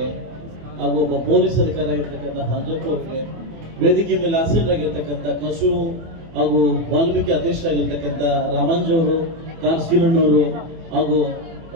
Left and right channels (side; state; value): left; late; 24 ms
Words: ಹಾಗೂ ಒಬ್ಬ ಪೊಲೀಸ್ ಅಧಿಕಾರಿ ಆಗಿರ್ತಕ್ಕಂಥ ಹಾಂಜಪ್ಪ ಅವರಿಗೆ ವೇದಿಕೆ ಮೇಲೆ ಆಸೀನರಾಗಿರ್ತಕ್ಕಂಥ ಕಸು ಹಾಗೂ ವಾಲ್ಮೀಕಿ ಅಧ್ಯಕ್ಷರಾಗಿರ್ತಕ್ಕಂಥ ರಾಮಾಂಜ್ ಅವರು ಶ್ರೀರಣ್ಣವರು ಹಾಗೂ